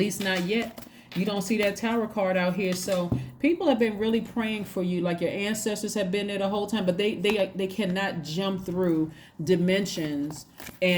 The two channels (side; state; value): both; identical; correlation 1.00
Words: not yet. You don't see that Tower card out here. So people have been really praying for you, like your ancestors have been there the whole time, but they cannot jump through dimensions